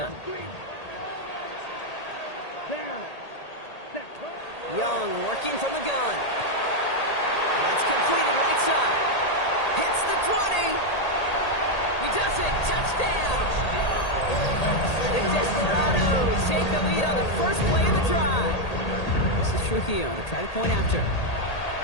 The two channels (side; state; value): right; late; 1.8 ms